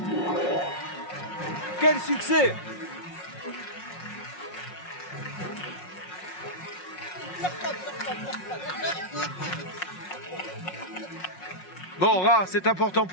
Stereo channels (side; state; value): right; late; 5.5 ms